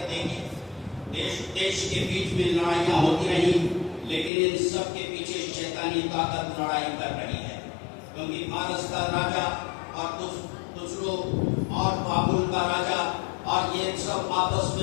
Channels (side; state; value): right; drops out; at 4.3 s